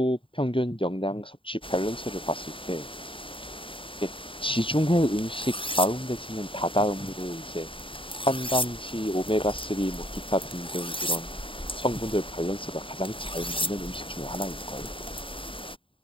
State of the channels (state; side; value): late; right; 0.25 ms